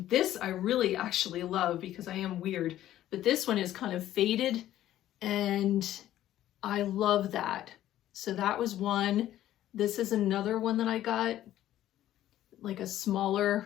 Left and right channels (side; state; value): right; quieter; 13.0 dB